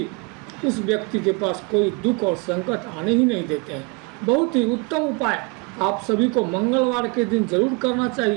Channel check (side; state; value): left; quieter; 29.6 dB